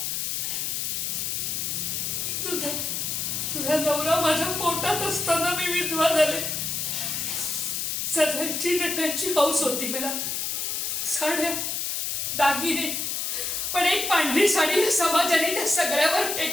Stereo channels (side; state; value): left; noise; hiss, 1 dB below the sound